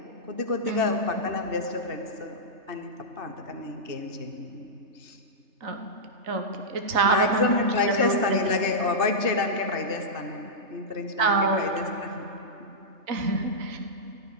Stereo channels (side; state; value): left; late; 3.3 ms